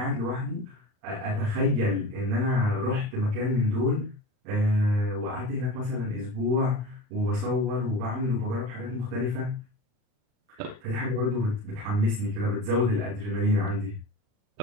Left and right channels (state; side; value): late; left; 39 ms